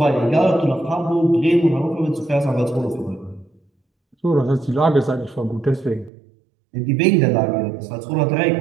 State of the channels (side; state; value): left; drops out; at 6.1 s